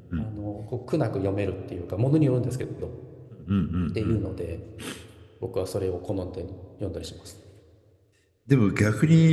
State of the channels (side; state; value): both; identical; correlation 1.00